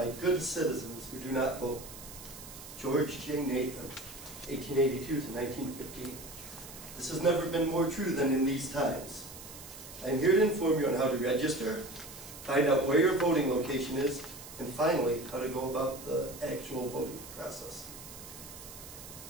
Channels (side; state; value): right; noise; hiss, 14 dB below the sound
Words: good citizens who do not vote. George J. Nathan, 1882 to 1915. This has never been more true than in these times. I am here to inform you on how to register, find out where your voting location is, and finally, how to go about the actual voting process.